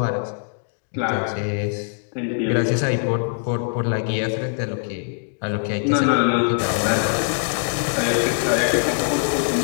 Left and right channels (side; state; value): right; silent; digital silence